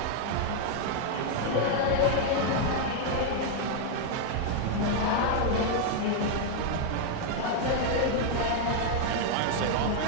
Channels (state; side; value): different; both; correlation 0.00